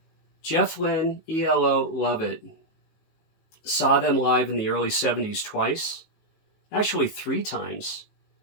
Jeff Lynne, ELO, love it. Saw them live in the early 70s twice. Actually 3 times.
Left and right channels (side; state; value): right; late; 19 ms